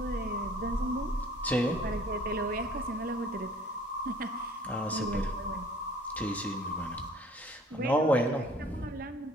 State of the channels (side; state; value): both; normal; correlation 0.52